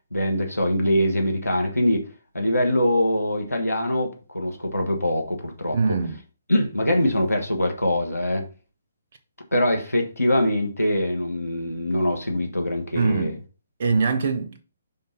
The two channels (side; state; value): both; inverted; correlation -0.85